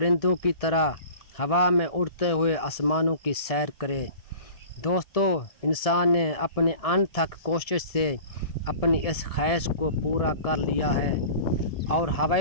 کی طرح ہوا میں اڑتے ہوئے آسمانوں کی سیر کرے۔ دوستو، انسان نے اپنی انتھک کوشش سے اپنی اس خواہش کو پورا کر لیا ہے اور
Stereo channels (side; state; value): right; late; 1.6 ms